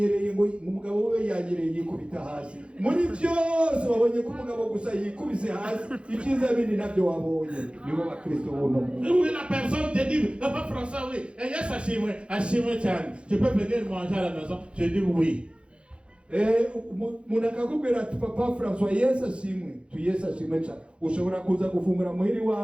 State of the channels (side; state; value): left; late; 0.058 ms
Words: ngo umugabo we yanyereye yikubita hasi. Muri byose babonye ko umugabo gusa yikubise hasi, ikiza bindi nabyo wabonye. Nibo bakristo bono. Oui, la personne te dit, papa François, oui. Et yes, achimwe cyane. Tu peux venir manger à la maison? Je dis oui. umuntu akakubwira ati papa François Yesu ashimwe, tu Yesu ashimwe cyane, ushobora kuza gufungura muhiri